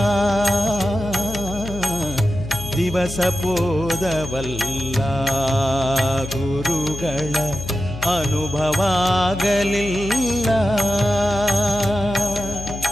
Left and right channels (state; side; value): noise; left; hum, 10 dB below the sound